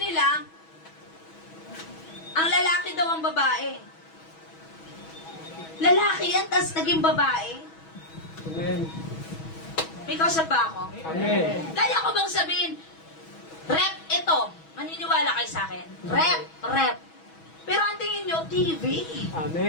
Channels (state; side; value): late; right; 6.2 ms